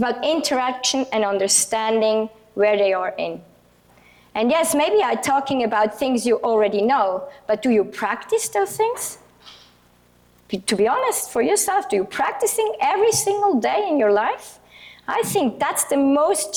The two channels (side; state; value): both; identical; correlation 1.00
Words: interaction and understanding where they are in. And yes, maybe I'm talking about things you already know, but do you practice those things? To be honest, for yourself, do you practicing every single day in your life? I think that's the most